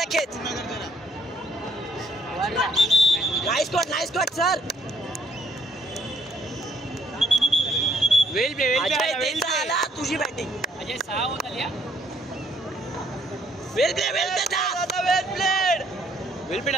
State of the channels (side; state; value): both; normal; correlation 0.66